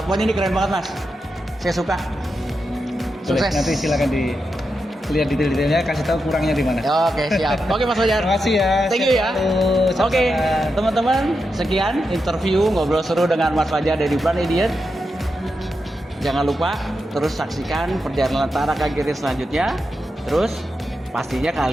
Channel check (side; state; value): both; normal; correlation 0.87